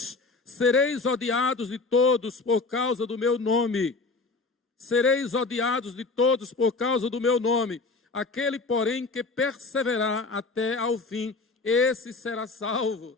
sereis odiados de todos por causa do meu nome. Sereis odiados de todos por causa do meu nome. Aquele, porém, que perseverar até ao fim, esse será salvo.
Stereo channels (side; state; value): right; quieter; 3.8 dB